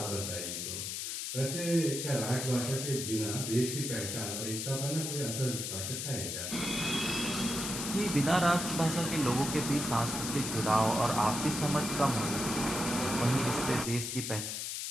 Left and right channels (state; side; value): noise; left; hiss, 4 dB below the sound